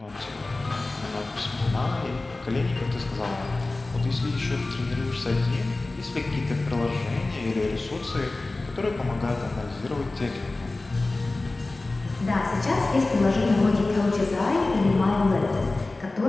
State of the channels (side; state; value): right; quieter; 3.1 dB